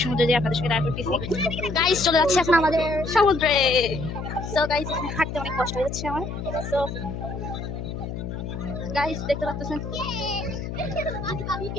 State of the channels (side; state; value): left; noise; hum, 6 dB below the sound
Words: সমুদ্রে যেয়ে আপনাদের সঙ্গে দেখা করতেছি। গাইস, চলে যাচ্ছে এখন আমাদের সমুদ্রে। সো গাইস, এখানে হাঁটতে অনেক কষ্ট হয়ে যাচ্ছে আমার। সো গাইস, দেখতে পাচ্ছেন